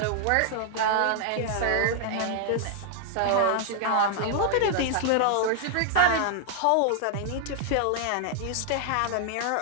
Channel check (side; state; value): both; different; correlation 0.00